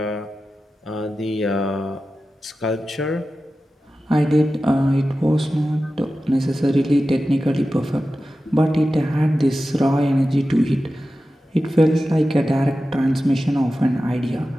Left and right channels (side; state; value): both; normal; correlation 0.94